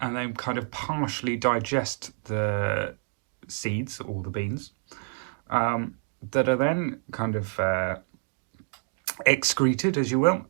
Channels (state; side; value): silent; left; digital silence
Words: then kind of partially digest the seeds or the beans, that are then kind of excreted, as you will,